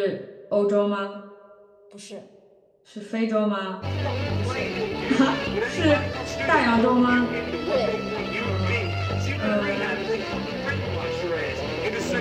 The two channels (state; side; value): identical; both; correlation 1.00